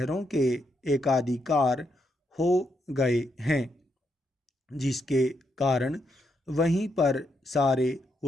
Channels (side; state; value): both; normal; correlation 0.79